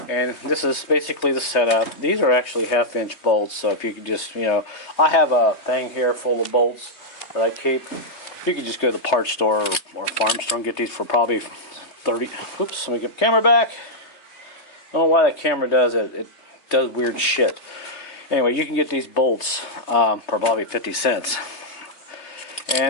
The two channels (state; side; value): late; right; 3.2 ms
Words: and this is basically the setup. These are actually 1/2-inch bolts, so if you could just, I have a thing here full of bolts that I keep. You can just go to the parts store or farm store and get these for probably 30. Oops, let me get the camera back. I don't know why that camera does it. It does weird shit. Anyway, you can get these bolts for probably 50 cents.